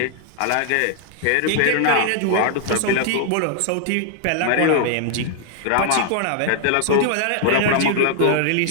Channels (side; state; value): both; different; correlation 0.00